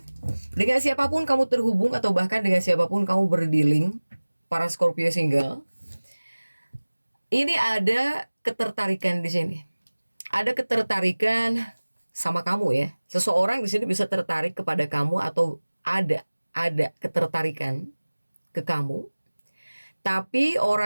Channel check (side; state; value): both; inverted; correlation -1.00